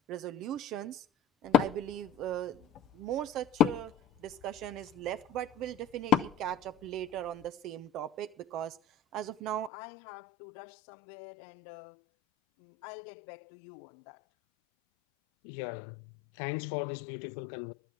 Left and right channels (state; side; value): drops out; right; at 9.7 s